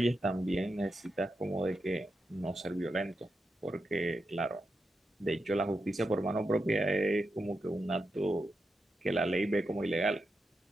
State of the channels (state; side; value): normal; both; correlation 0.87